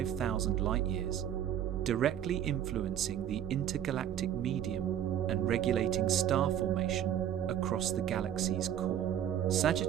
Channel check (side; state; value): left; quieter; 10.3 dB